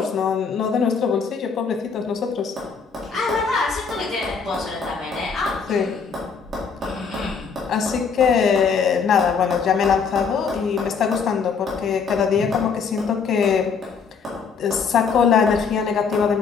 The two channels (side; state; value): right; quieter; 5.8 dB